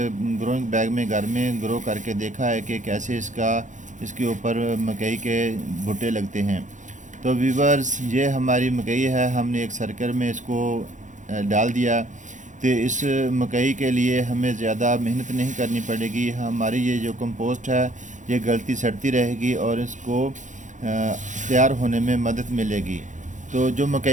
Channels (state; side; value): late; left; 0.36 ms